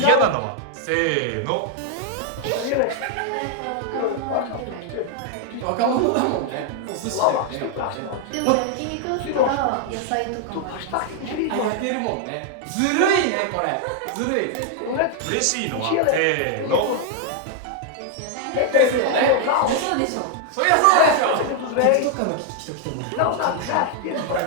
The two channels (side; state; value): both; different; correlation 0.00